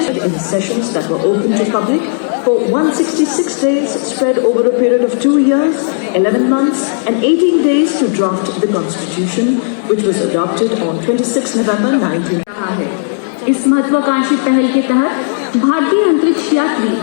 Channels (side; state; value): right; silent; digital silence